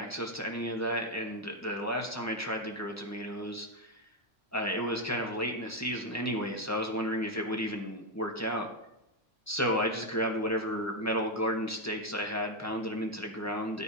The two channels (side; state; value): both; normal; correlation 0.05